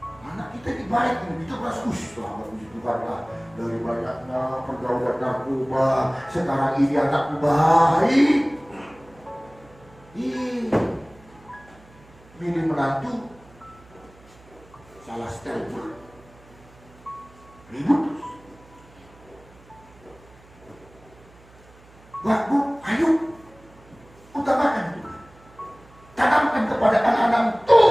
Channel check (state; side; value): noise; right; hum, 25 dB below the sound